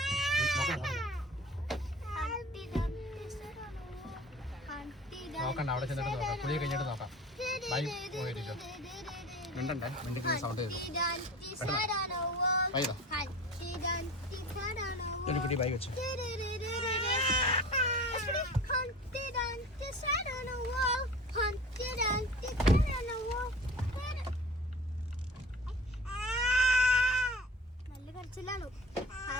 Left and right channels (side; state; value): both; normal; correlation 0.39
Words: നോക്കണ്ട, അവിടെ ചെന്നിട്ട് നോക്കാം. കുളിയെ കഴിഞ്ഞിട്ട് നോക്കാം. ബൈ പോയിരിക്കും. മിണ്ടണ്ടേ, മിണ്ടിക്കുന്ന സൗണ്ട് ചെയ്തു. ബൈ ഒരു കുട്ടി ബൈ വെച്ചു. Hunt it on the side on the wall. Hunt it on.